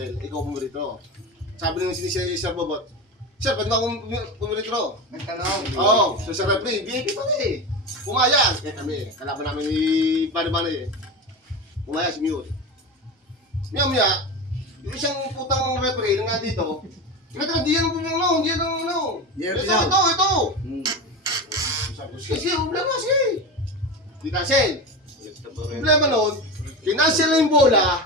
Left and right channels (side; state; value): both; normal; correlation 0.24